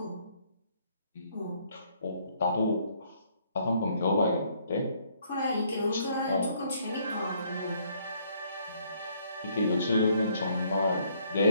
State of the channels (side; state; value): both; inverted; correlation -0.66